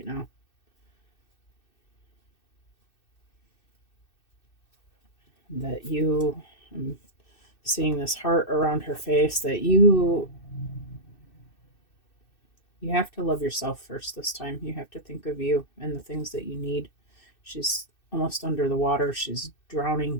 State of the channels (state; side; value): late; right; 2.6 ms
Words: now. That I'm seeing this heart around her face. That you have to love yourself first this time. You have to think of you and the things that you need. She's almost under the water. She's